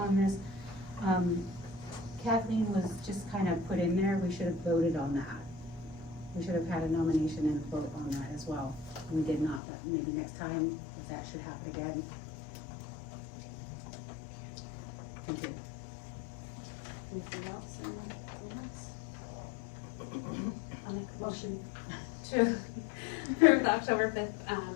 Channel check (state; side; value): drops out; right; at 9.6 s